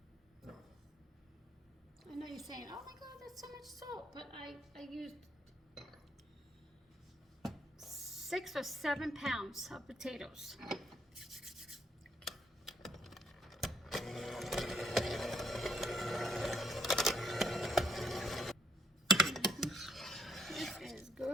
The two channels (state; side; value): normal; both; correlation 0.71